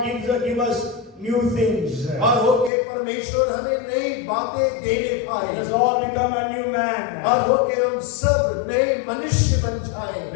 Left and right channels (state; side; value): drops out; right; at 2.7 s